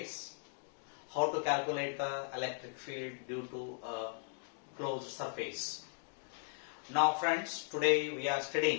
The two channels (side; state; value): right; silent; digital silence